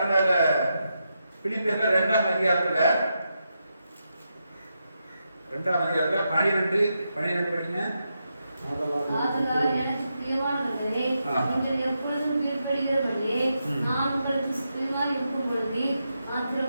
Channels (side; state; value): both; inverted; correlation -0.85